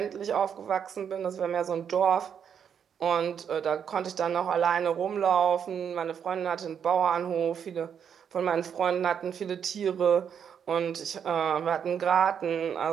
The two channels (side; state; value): left; quieter; 7.9 dB